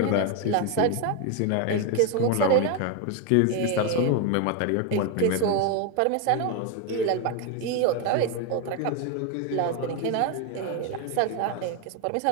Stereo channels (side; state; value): both; different; correlation 0.01